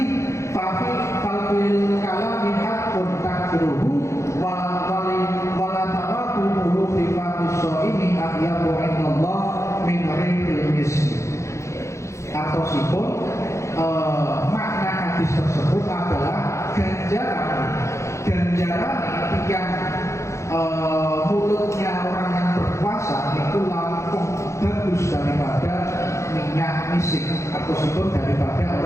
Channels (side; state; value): right; late; 0.14 ms